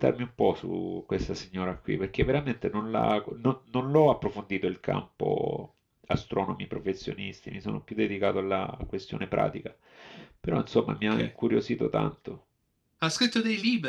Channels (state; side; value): identical; both; correlation 1.00